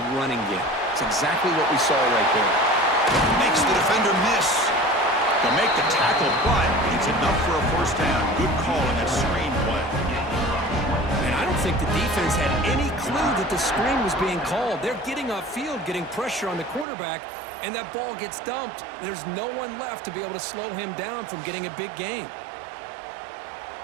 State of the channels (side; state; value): left; drops out; at 16.9 s